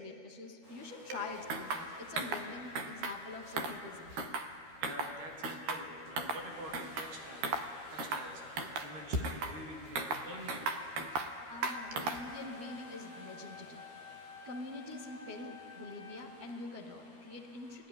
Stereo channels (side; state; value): left; late; 13 ms